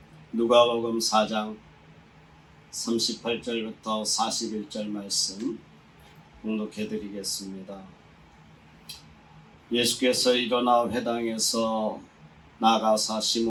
누가복음 4장 38절부터 41절 말씀 봉독해 드리겠습니다. 예수께서 일어나 회당에서 나가사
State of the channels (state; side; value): identical; both; correlation 1.00